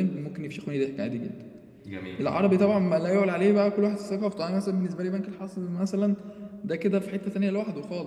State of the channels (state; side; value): identical; both; correlation 1.00